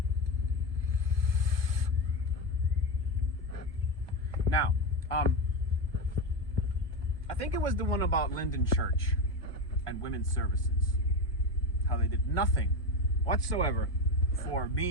Now, I think it was the one about Linden Church and women's services. How they did nothing whatsoever for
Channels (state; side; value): late; right; 1.7 ms